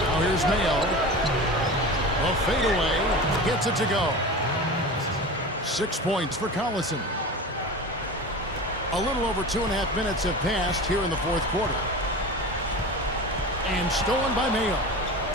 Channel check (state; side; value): normal; both; correlation 0.31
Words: here's Mayo. A fadeaway. Gets it to go. 6 points for Collison. A little over 2.5 minutes have passed here in the fourth quarter. And stolen by Mayo.